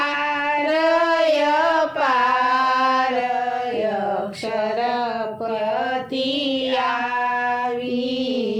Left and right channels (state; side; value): identical; both; correlation 1.00